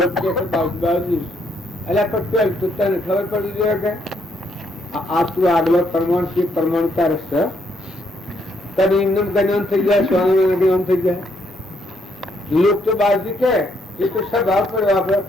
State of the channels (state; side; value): normal; both; correlation 0.73